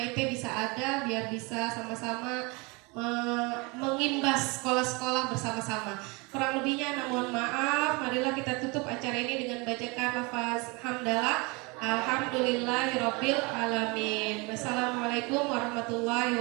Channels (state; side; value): quieter; left; 27.8 dB